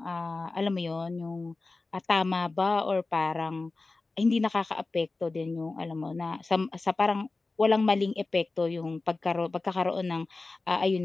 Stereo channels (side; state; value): right; quieter; 3.5 dB